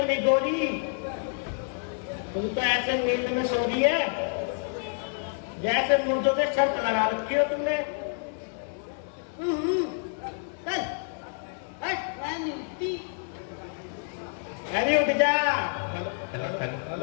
निगोरी, तुम तो ऐसे नींद में सो रही है जैसे मुर्दों पे शर्त लगा रखी हो तुमने। अरे उठ जा,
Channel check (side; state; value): right; silent; 59 dB below the other